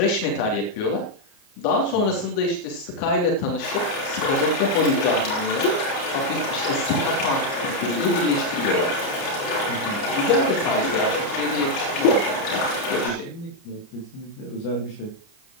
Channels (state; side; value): late; right; 29 ms